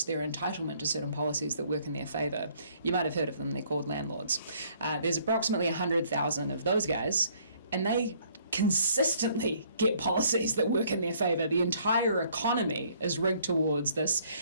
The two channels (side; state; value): both; inverted; correlation -0.62